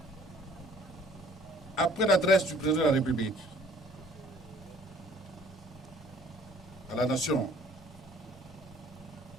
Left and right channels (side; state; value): both; normal; correlation 0.55